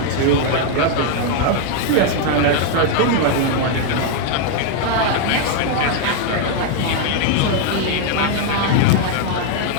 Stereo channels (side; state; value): both; different; correlation 0.00